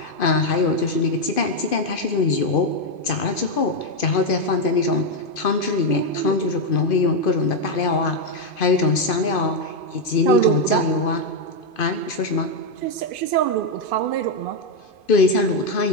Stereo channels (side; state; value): right; late; 2.5 ms